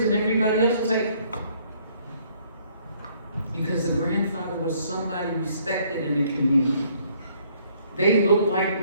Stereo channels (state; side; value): inverted; both; correlation -0.64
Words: and everybody else was like, because the grandfather was somebody respected in the community. They looked like